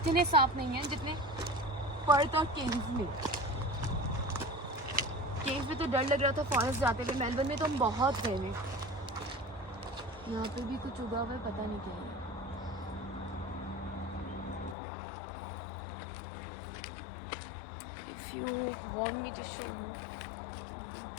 सांप नहीं हैं जितने पर्थ और केव्स में. केव्स में तो डर लग रहा था फॉरेस्ट जाते हुए. मेलबर्न में तो हम बहुत गए हैं. यहाँ पे भी कुछ उगा हुआ है पता नहीं क्या है. If you want me to show you.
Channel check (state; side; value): drops out; right; at 14.8 s